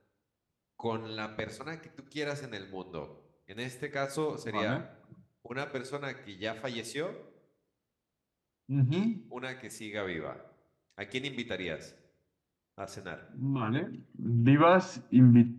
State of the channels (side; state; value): both; identical; correlation 1.00